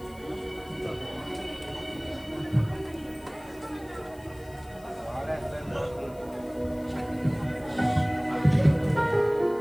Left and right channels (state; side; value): noise; left; hiss, 25 dB below the sound